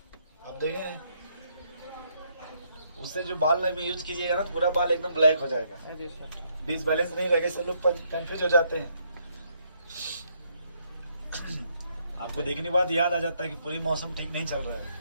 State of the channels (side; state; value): both; inverted; correlation -0.72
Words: आप देखें उससे जो बाल में यूज कीजिएगा ना पूरा बाल एकदम ब्लैक हो जाएगा, अरे सर। डिसबैलेंस नहीं रहेगा, सब लोग कंफ्यूज हो जाते हैं। आपको देखने के बाद याद आ जाता है कि पूरी मौसम ठीक नहीं चल रहा है।